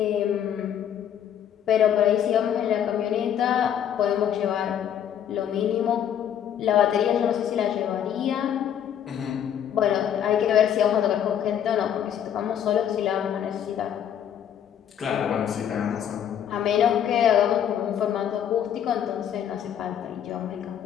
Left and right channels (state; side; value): quieter; right; 9.5 dB